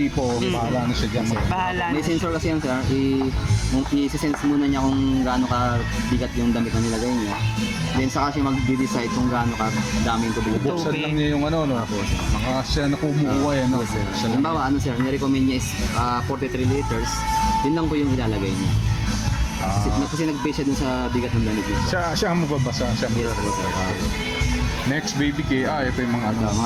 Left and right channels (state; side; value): identical; both; correlation 1.00